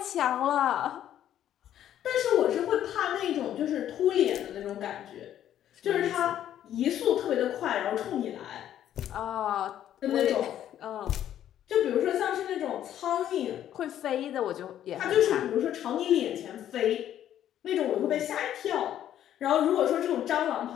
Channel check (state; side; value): quieter; right; 11.1 dB